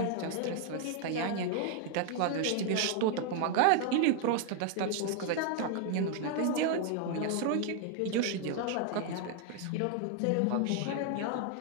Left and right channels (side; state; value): both; different; correlation 0.00